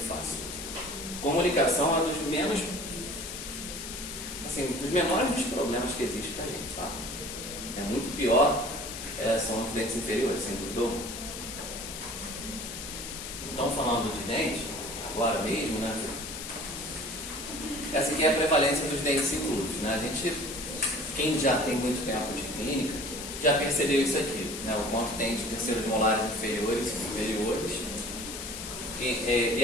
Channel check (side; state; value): left; noise; hiss, 8 dB below the sound